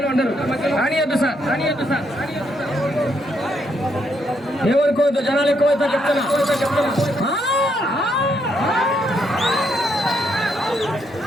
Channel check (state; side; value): normal; both; correlation 0.76